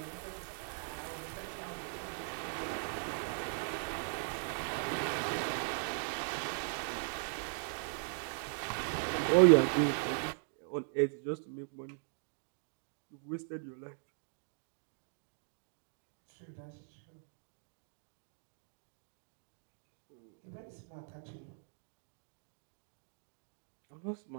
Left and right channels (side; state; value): left; silent; digital silence